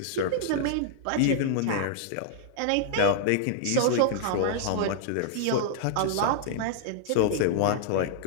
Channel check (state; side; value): different; both; correlation -0.01